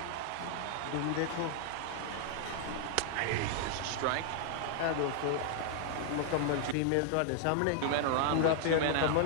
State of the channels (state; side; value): different; both; correlation 0.00